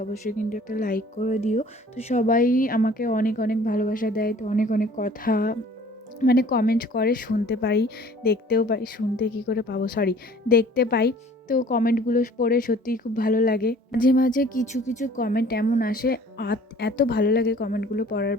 অবশ্যই কিন্তু একটা লাইক করে দিও। তো সবাই আমাকে অনেক অনেক ভালোবাসা দেয়, তো অনেক অনেক কথা কমেন্ট করে, শুনতে পাই, দেখতেও পাই। শুনতে কি করে পাবো, সরি, দেখতে পাই। তো কমেন্টগুলো পড়ে সত্যিই খুব ভালো লাগে। মাঝে মাঝে কিছু কিছু কমেন্ট এমন আসে, এত ভালো লাগে কমেন্টগুলো পড়ার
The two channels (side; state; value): both; normal; correlation 0.51